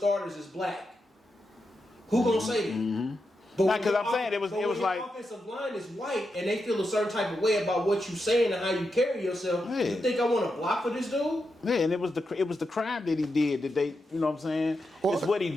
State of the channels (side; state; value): both; normal; correlation 0.87